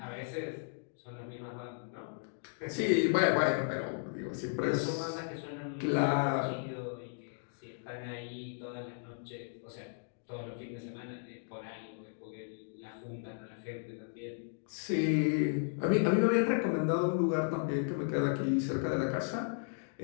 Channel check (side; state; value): right; silent; digital silence